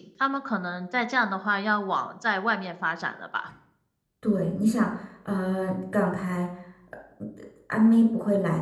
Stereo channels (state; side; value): identical; both; correlation 1.00